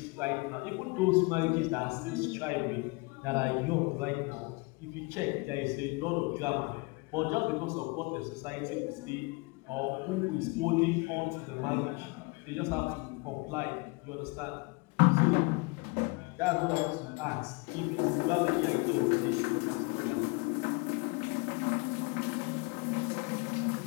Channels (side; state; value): right; quieter; 27.8 dB